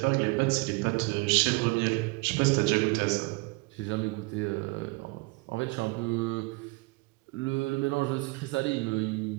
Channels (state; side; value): quieter; left; 26.5 dB